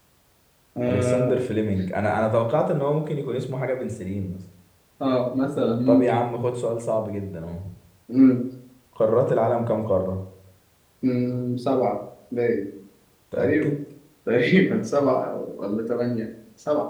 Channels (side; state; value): both; identical; correlation 1.00